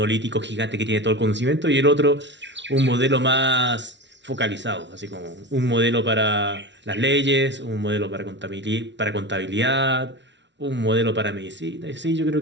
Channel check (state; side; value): late; left; 0.52 ms